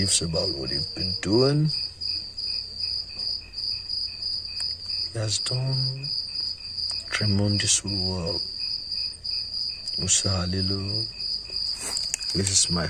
about what you've been doing. He has done tremendously well. Musa Halilu, this is my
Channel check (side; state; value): both; identical; correlation 1.00